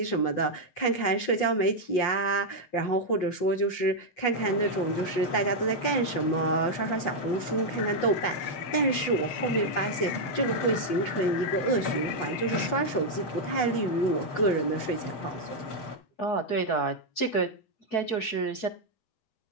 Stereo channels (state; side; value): late; right; 8.2 ms